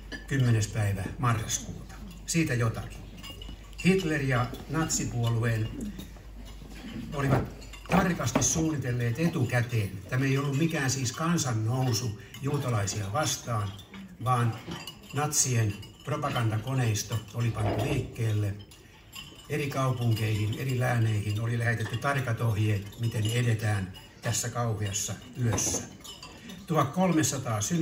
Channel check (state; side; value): identical; both; correlation 1.00